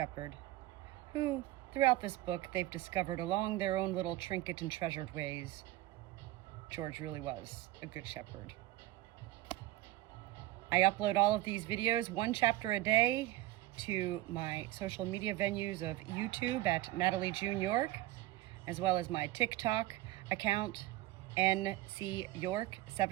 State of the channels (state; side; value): quieter; left; 16.3 dB